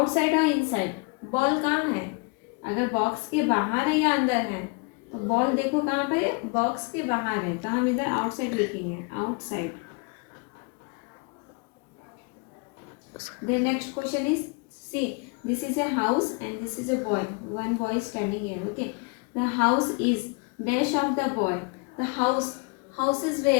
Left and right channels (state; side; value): quieter; right; 31.7 dB